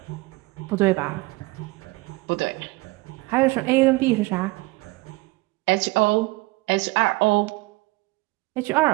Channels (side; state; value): left; quieter; 22.6 dB